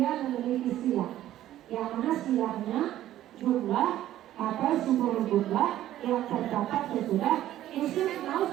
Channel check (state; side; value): quieter; left; 13.1 dB